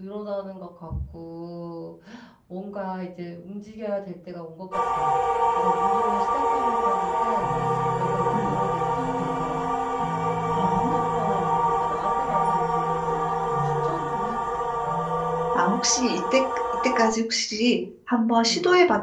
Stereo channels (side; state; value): both; identical; correlation 1.00